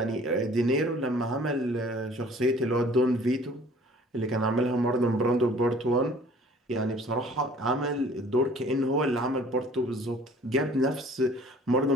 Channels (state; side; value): normal; both; correlation 0.52